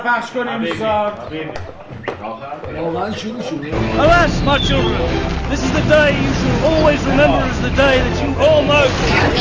پخش کنیم دوستا. واقعا شروع شد. Alas, my children, this is the day you shall always remember as the day that you all know.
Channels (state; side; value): identical; both; correlation 1.00